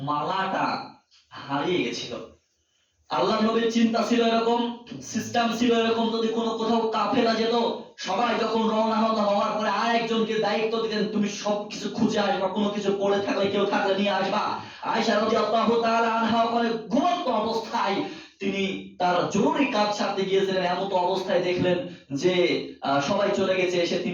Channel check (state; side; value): identical; both; correlation 1.00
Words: মালাটা হারিয়ে গেছিল। আল্লাহর নবীর চিন্তা ছিল এরকম, সিস্টেম ছিল এরকম, যদি কোনো কোথাও কাফেলা যেত, সবাই যখন রওনা হওয়ার পরে আর একজনকে দায়িত্ব দিতেন, তুমি সবকিছু খুঁজে আসবা, কোনো কিছু পড়ে থাকলে কেউ থাকলে নিয়ে আসবা। আয়েশা রাদিয়াল্লাহু তাআলা আনহা ওখানে ঘুমন্ত অবস্থায় তিনি তার জরুরি কাজ সারতে গিয়েছিলেন। এমন অবস্থায় দেখলেন যে সবাই চলে গেছে, এসে